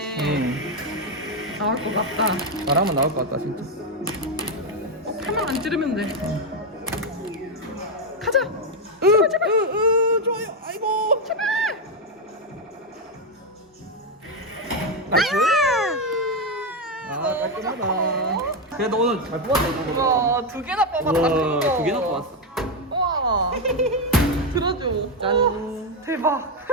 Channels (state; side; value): normal; both; correlation 0.06